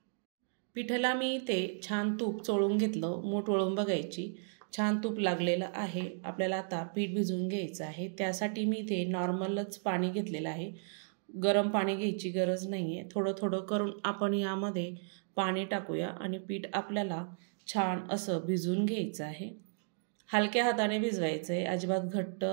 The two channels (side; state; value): left; silent; digital silence